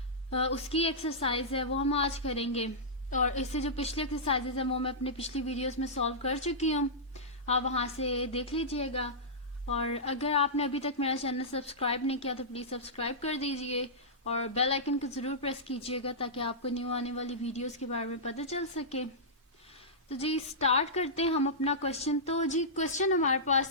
उसकी एक्सरसाइज है वो हम आज करेंगे। और इससे जो पिछली एक्सरसाइजेज है वो मैं अपने पिछली वीडियोस में सॉल्व कर चुकी हूँ, आप वहाँ से देख लीजिएगा। और अगर आपने अभी तक मेरा चैनल सब्सक्राइब नहीं किया तो प्लीज़ सब्सक्राइब कर दीजिए और बेल आइकन को ज़रूर प्रेस कीजिएगा ताकि आपको न्यू आने वाली वीडियोस के बारे में पता चल सके। तो जी स्टार्ट करते हैं हम अपना क्वेश्चन। तो जी क्वेश्चन हमारे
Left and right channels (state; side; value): normal; both; correlation -0.14